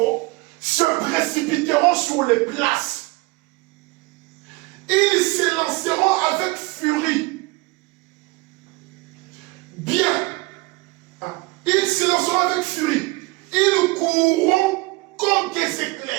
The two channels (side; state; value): left; quieter; 23.9 dB